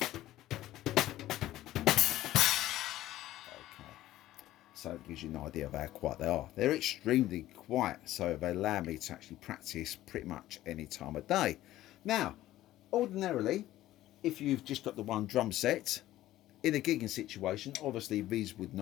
so it gives you an idea of how quiet they are. They're extremely quiet, so they allow me to actually practice pretty much any time of day. Now, ordinarily, if you've just got the one drum set, in a gigging situation, obviously these would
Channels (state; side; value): quieter; right; 14.8 dB